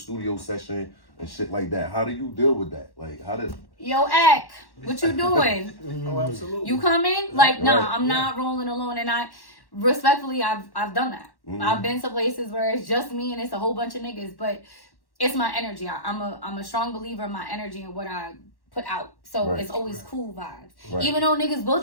session and shit like that. How do you deal with that? Like, how does... Yo, Ack, what you doing? Oh, absolutely. You coming? Like, nah, I'm not rolling alone. And respectfully, I've done that. I've been to places where it's just me and it's a whole bunch of niggas, but it's my energy. I'm a strong believer in my energy and what I put out. So it's always cool vibes. Even though niggas will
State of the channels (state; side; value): late; right; 1.1 ms